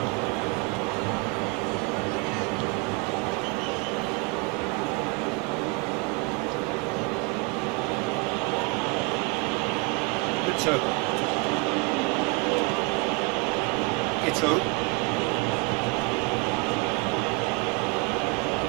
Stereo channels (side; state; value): left; quieter; 27.8 dB